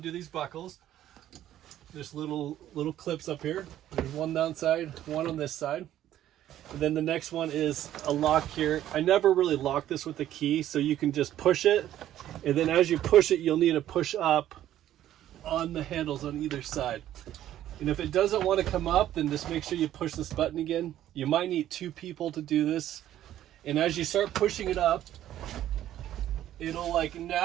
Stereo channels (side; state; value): left; quieter; 12.3 dB